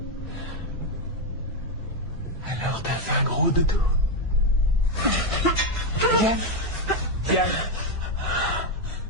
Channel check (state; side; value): normal; both; correlation 0.06